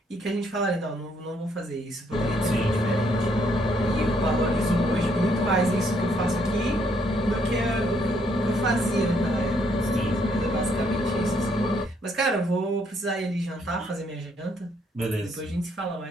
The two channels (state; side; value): normal; both; correlation 0.70